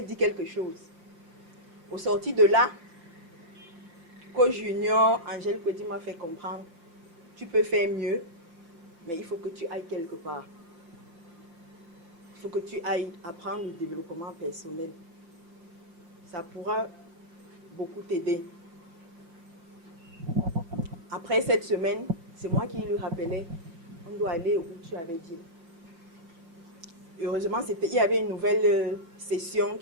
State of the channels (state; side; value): late; left; 5.9 ms